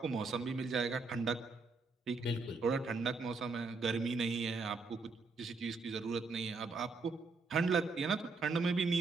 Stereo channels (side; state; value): left; quieter; 4.1 dB